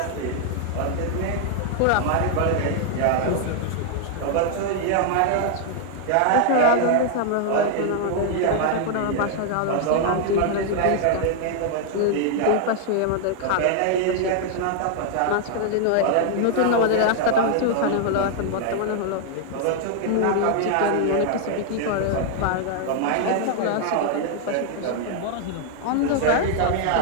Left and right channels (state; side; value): different; both; correlation 0.00